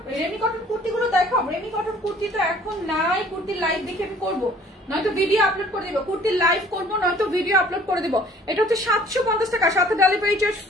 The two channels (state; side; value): normal; both; correlation 0.54